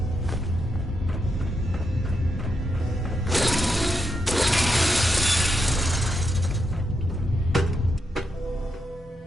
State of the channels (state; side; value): normal; both; correlation 0.83